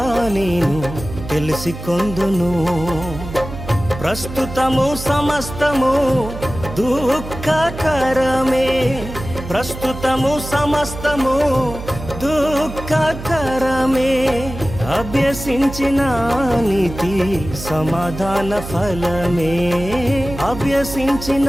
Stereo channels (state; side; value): noise; right; hum, 10 dB below the sound